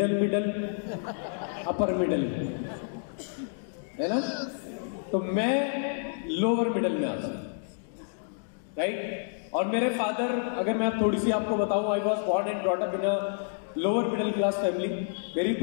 middle, upper middle, है ना। तो मैं लोअर मिडल में आता हूं, राइट। और मेरे फादर, अगर मैं थोड़ी सी आपको बताऊं, I was born and brought up in a lower middle class family. मेरी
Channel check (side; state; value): right; silent; digital silence